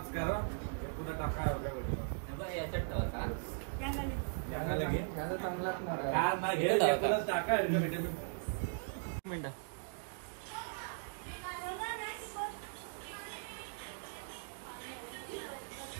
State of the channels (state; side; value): silent; left; digital silence